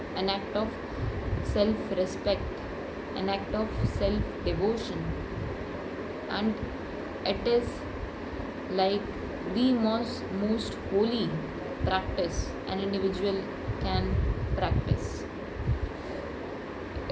an act of self respect, an act of self devotion, and it is like the most holy practice an individual can practice.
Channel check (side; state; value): both; identical; correlation 1.00